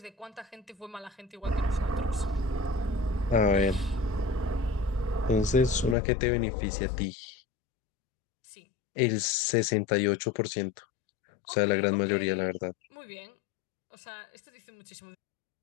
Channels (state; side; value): drops out; right; at 6.0 s